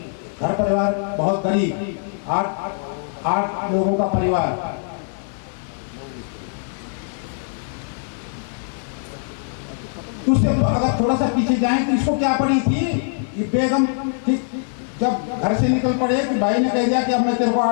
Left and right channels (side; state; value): right; silent; 63 dB below the other